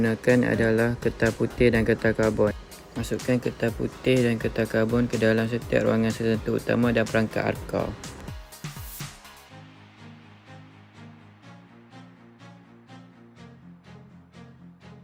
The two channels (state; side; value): identical; both; correlation 1.00